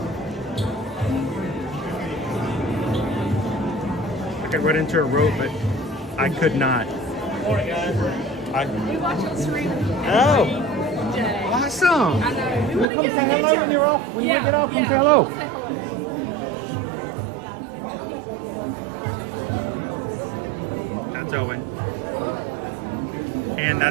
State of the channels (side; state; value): left; drops out; at 12.9 s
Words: I could run into a rope, but I could not. Morning, guys. We watch on stream. Oh, Day. awesome! I know. We want to Come get say a hello picture. when you're off. When you get off, you say hello. That's Owen, and